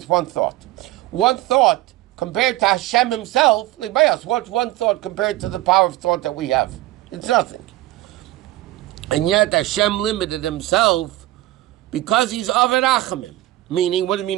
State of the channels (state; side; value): quieter; left; 17.0 dB